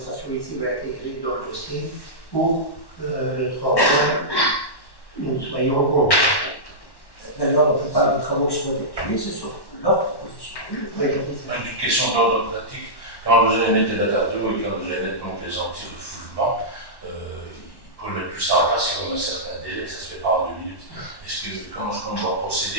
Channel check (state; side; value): late; right; 1.1 ms